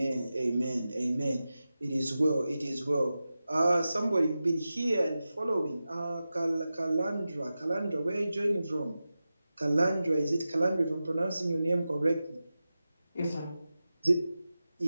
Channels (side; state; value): both; inverted; correlation -0.93